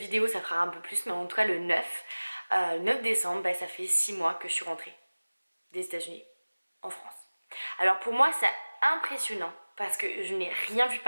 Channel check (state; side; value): inverted; both; correlation -1.00